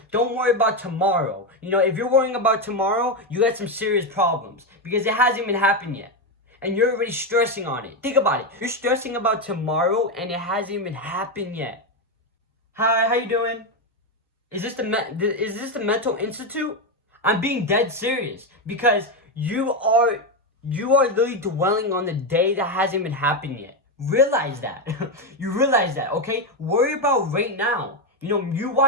Don't worry about tomorrow. If you're worrying about tomorrow, you got some serious problems because it hasn't even happened yet. And you're already stressing on it. Think about it. You're stressing about tomorrow and it hasn't even happened yet. Hi, how you doing? Is this the mental institute? I'm being dead serious because you are literally dwelling on the day that hasn't even happened yet. Realize that. You realize that, okay? Worry about right now. You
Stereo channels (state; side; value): normal; both; correlation 0.09